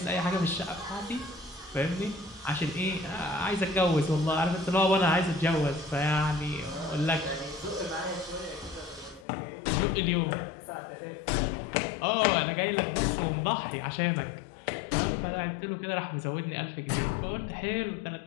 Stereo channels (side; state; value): right; drops out; at 9.2 s